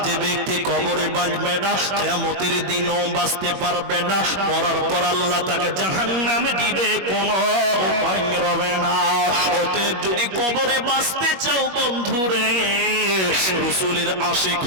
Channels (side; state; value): left; late; 21 ms